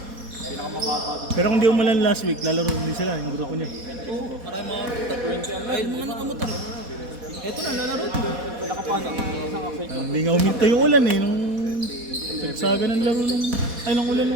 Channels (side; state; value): left; late; 4.2 ms